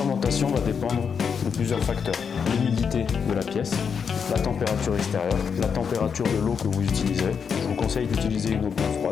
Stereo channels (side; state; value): right; quieter; 6.5 dB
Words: va dépendre de plusieurs facteurs. L'humidité de la pièce, la température extérieure, la température de l'eau que vous utiliserez. Je vous conseille d'utiliser une eau bien